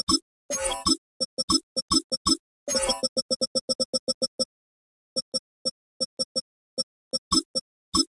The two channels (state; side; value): identical; both; correlation 1.00